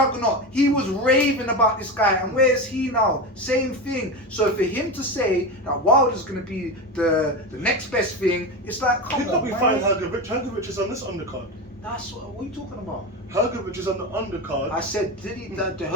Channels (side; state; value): both; normal; correlation 0.20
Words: He was raving about this guy, and where's he now? Same thing. So for him to say that Wilder's going to be the next best thing, it's like, come He could on, be man. fighting Hrgovic. Hrgovic is on this undercard. That's what are you talking about? Hrgovic is on the undercard. I said, the